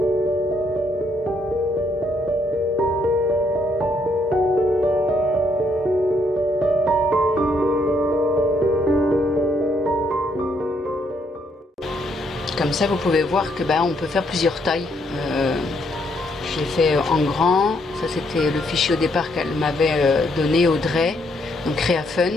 Comme ça vous pouvez voir que on peut faire plusieurs tailles. J'ai fait en grand, ça c'était le fichier au départ qu'elle m'avait donné, Audrey, donc Créa Fun.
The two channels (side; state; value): both; normal; correlation 0.72